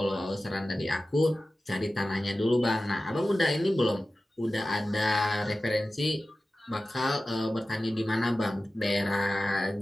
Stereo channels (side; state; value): both; normal; correlation 0.95